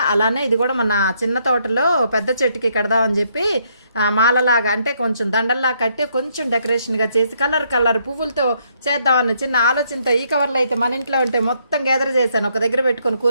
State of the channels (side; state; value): both; inverted; correlation -0.72